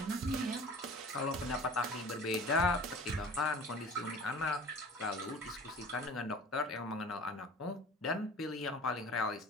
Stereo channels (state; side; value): normal; both; correlation 0.42